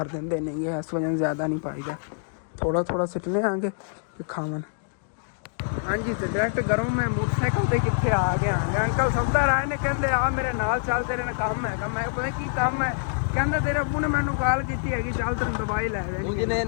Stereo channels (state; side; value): silent; right; digital silence